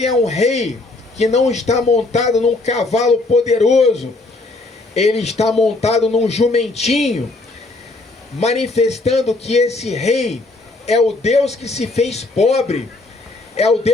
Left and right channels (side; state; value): right; quieter; 3.1 dB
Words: é um rei que não está montado num cavalo poderoso. Ele está montado num jumentinho, manifestando que esse rei é o Deus que se fez pobre, é o